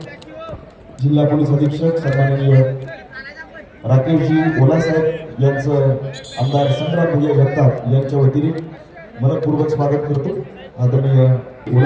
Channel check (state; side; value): identical; both; correlation 1.00